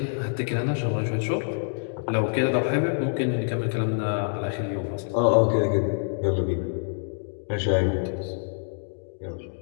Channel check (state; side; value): silent; right; digital silence